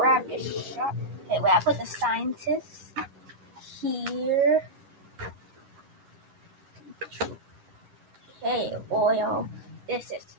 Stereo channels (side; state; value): left; late; 11 ms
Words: this sharp. Okay, wait, I put the scientist here. Okay, oil. This